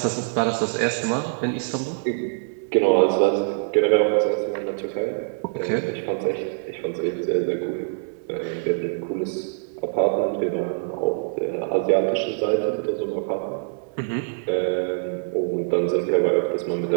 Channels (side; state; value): left; silent; digital silence